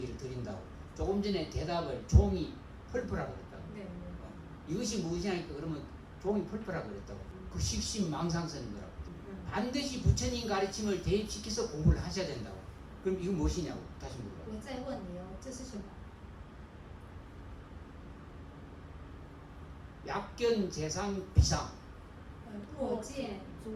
드린다고. 조금 전에 대답을 종이 펄펄하고 그랬다고. 네. 이것이 무엇이냐니까 그러면 종이 펄펄하고 그랬다고. 그 식심망상 쓰는 거라고. 반드시 부처님 가르침을 대입시켜서 공부를 하셔야 된다고. 그럼 이거 무엇이냐고 다시 물어봐. 我再问你哦，这是什么？ 약견 재상 비상. 过见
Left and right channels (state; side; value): identical; both; correlation 1.00